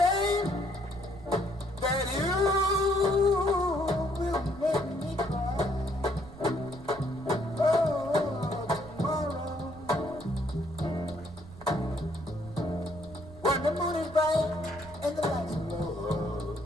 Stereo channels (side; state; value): right; noise; rumble, 17 dB below the sound